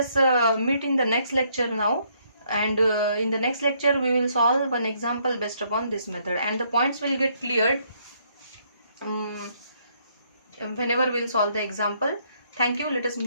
meet in the next lecture now, and in the next lecture we will solve one example based upon this method, and the points will get cleared whenever we will solve the example. Thank you. Let us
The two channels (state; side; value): inverted; both; correlation -0.70